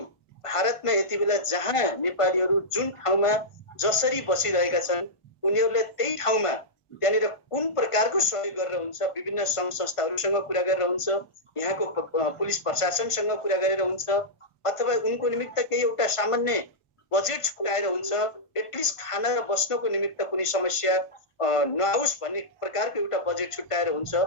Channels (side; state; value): right; late; 1.5 ms